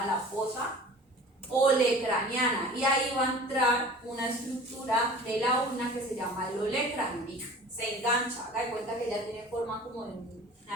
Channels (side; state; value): both; normal; correlation 0.42